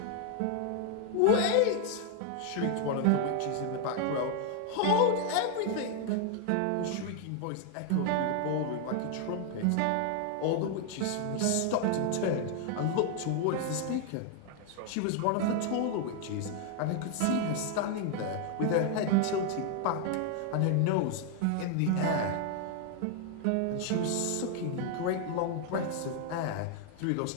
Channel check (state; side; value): different; both; correlation 0.00